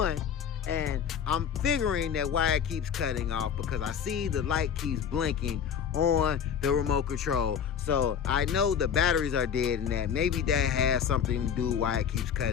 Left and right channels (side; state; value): right; quieter; 7.9 dB